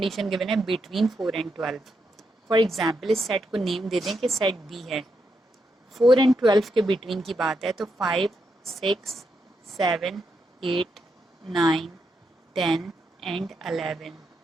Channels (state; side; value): normal; both; correlation 0.82